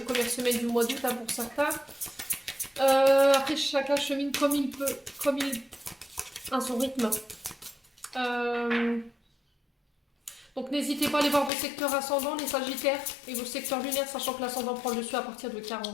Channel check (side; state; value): right; drops out; at 11.5 s